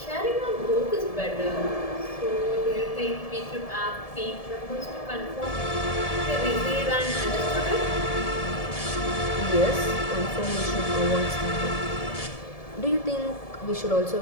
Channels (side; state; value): right; late; 1.7 ms